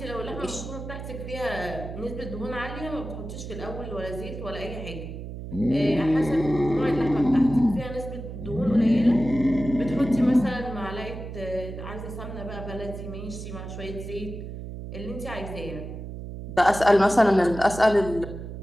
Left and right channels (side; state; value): right; noise; hum, 9 dB below the sound